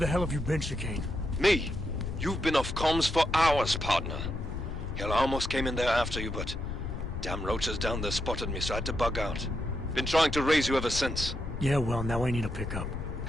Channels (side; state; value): left; noise; rumble, 6 dB below the sound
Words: hell have you been, Chicane? Me? You've been off comms for hours, partner. Hell, I almost came in there after you, but... damn roaches down there spotted me, so I had to bug out. Been trying to raise you ever since. Yeah, well, now I need a pickup.